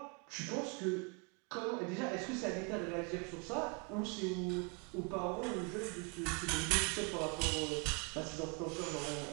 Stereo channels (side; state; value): left; quieter; 33.6 dB